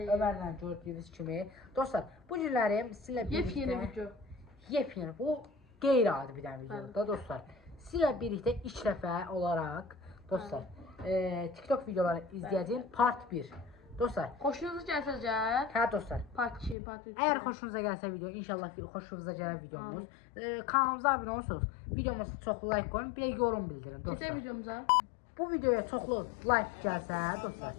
Ömərlə gördüyünüz kimi. Dostlar, bu günləri sizinlə birlikdə Yepyeni video. Yepyeni, bu qeyri-adi bir dənə videodur da dostlar. Sizinlə birlikdə ilk dəfə olaraq dostlar, TikTok videoları izləyəcəyim part 1. Dostlar, Xoşunuza gəlsəcə, hə dostlar. part 2, part 3. Əgər xoşunuza gəlsə video, inşallah xoşunuza gələr videomuz. Kanalımıza abunə olursunuz. Videomuza çoxlu like qoyun, bir də yorum bildirin dostlar. Keçək videomuza. Bu videoya çoxlu like gəlsə dostlar,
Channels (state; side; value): drops out; right; at 16.8 s